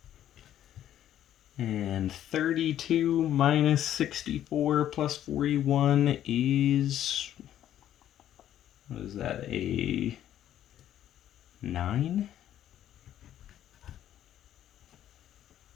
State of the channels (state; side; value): quieter; right; 11.4 dB